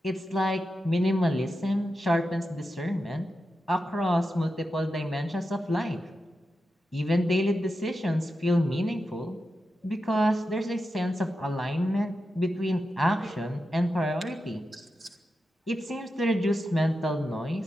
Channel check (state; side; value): normal; both; correlation 0.89